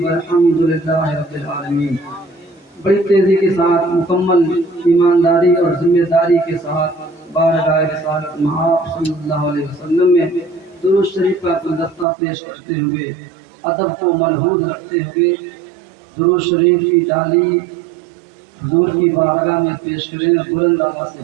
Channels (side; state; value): left; drops out; at 12.1 s